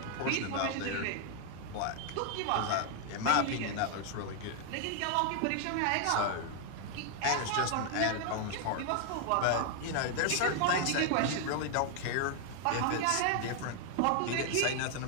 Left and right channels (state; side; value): different; both; correlation 0.00